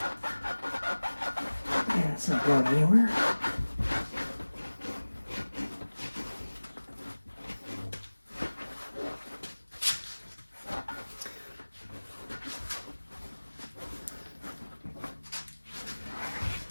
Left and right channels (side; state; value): both; inverted; correlation -1.00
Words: It's not going anywhere.